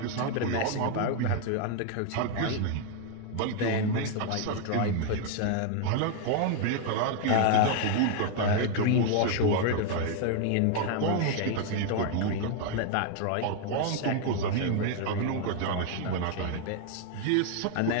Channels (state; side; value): different; both; correlation 0.00